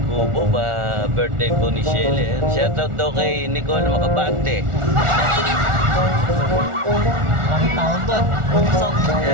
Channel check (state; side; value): late; left; 1.4 ms